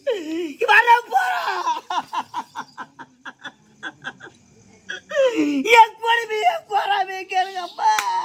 என் கொடுமைய போறாமே கேளுங்கப்பா.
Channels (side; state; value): both; identical; correlation 1.00